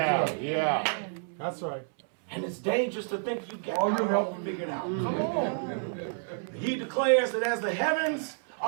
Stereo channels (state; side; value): silent; left; 58 dB below the other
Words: That's right. And it's dangerous to think you got it all figured out. Come on. He declares that as the heavens